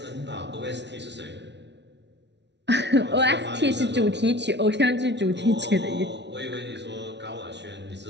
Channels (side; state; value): left; late; 0.50 ms